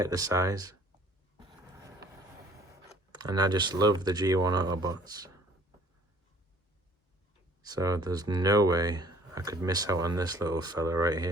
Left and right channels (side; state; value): both; normal; correlation 0.56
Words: the size. And I just love the G1 Autobots. So there's no way I could miss out on this little fella right